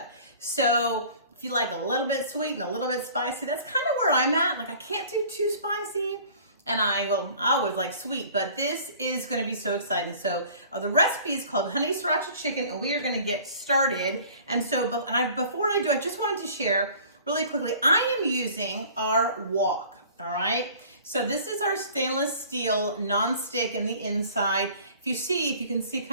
So if you like a little bit sweet and a little bit spicy, that's kind of where I'm at. Like I can't do too spicy. And I always like sweet, but this is gonna be so exciting. So the recipe is called honey sriracha chicken, and we are gonna get started. And so, before I do, I just wanted to share really quickly, I am using our wok, all right? So this is our stainless steel non-stick in the inside. If you can see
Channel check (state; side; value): inverted; both; correlation -0.48